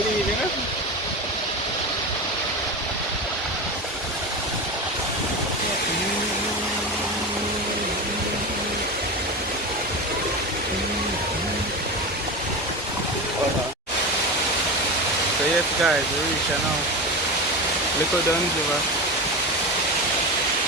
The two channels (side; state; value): both; normal; correlation 0.23